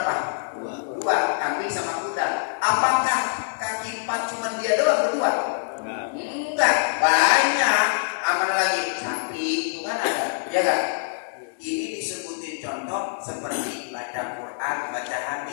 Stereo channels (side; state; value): right; silent; digital silence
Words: 2, kambing sama kuda. Apakah kaki 4 cuma dia doang berdua? Enggak, banyak. Aman lagi, sapi itu kan ada, ya kan? Ini disebutin contoh seperti baca Quran, baca